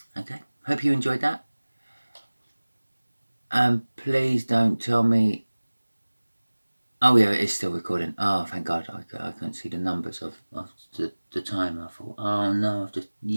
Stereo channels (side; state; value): both; inverted; correlation -1.00